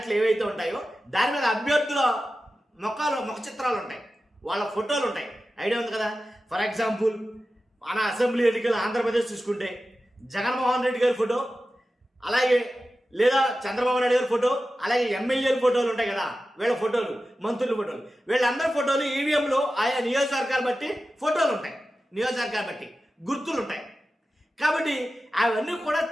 ఏవైతే ఉంటాయో దాని మీద అభ్యర్థుల ముఖ చిత్రాలు ఉంటాయి, వాళ్ళ ఫోటోలు ఉంటాయి. ఐడియా ఉంది కదా. ఫర్ ఎగ్జాంపుల్ మన అసెంబ్లీ ఎన్నికలు ఆంధ్రప్రదేశ్ చూసుకుంటే జగన్మోహన్ రెడ్డి గారి ఫోటో, అలాగే లేదా చంద్రబాబు నాయుడు గారి ఫోటో, అలాగే ఎమ్మెల్యేల ఫోటోలు ఉంటాయి కదా, వీళ్ళ ఫోటోలు, మంత్రుల ఫోటోలు, వీళ్ళందరి ఫోటోలు ఈవీఎంలో ఆయా నియోజకవర్గాలు బట్టి ఫోటోలు ఉంటాయి, నియోజకవర్గాలు బట్టి గుర్తులు ఉంటాయి. కాబట్టి అవన్నీ కూడా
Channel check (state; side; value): normal; both; correlation 0.94